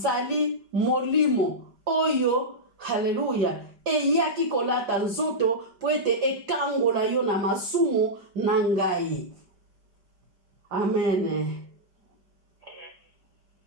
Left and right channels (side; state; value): left; late; 5.1 ms